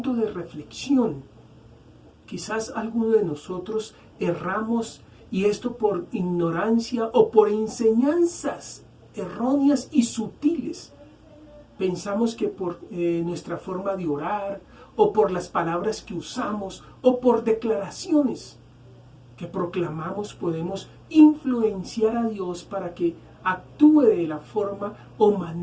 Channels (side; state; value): both; identical; correlation 1.00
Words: de reflexión. Quizás alguno de nosotros erramos, y esto por ignorancia o por enseñanzas erróneas y sutiles. Pensamos que por nuestra forma de orar, o por las palabras que usamos, o por declaraciones que proclamamos, podemos influenciar a Dios para que actúe de la forma o